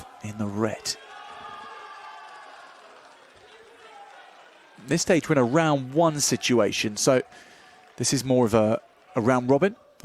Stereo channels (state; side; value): identical; both; correlation 1.00